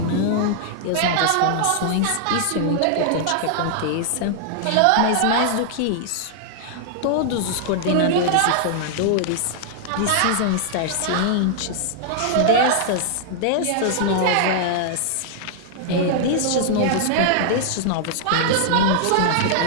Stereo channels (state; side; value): different; both; correlation -0.01